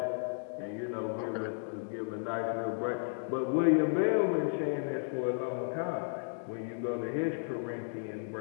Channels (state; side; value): silent; right; digital silence